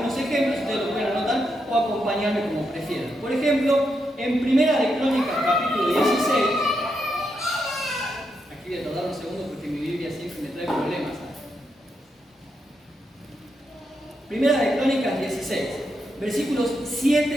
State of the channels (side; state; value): both; normal; correlation 0.83